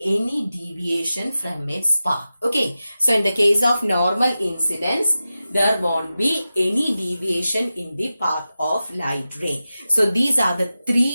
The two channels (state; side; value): inverted; both; correlation -0.94